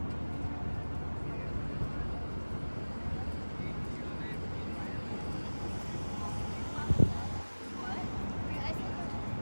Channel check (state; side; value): inverted; both; correlation -1.00